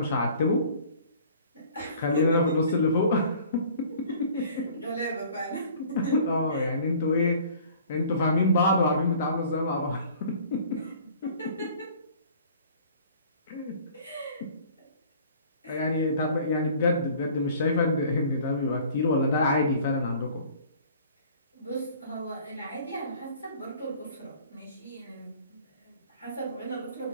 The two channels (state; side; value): inverted; both; correlation -0.50